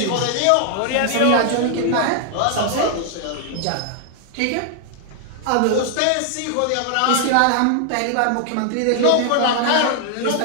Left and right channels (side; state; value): both; different; correlation 0.00